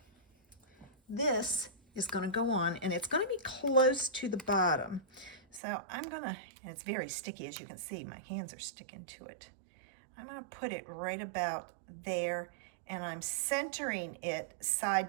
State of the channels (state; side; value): drops out; left; at 5.6 s